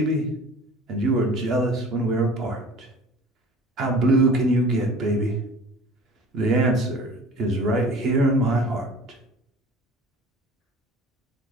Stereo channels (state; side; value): normal; both; correlation 0.44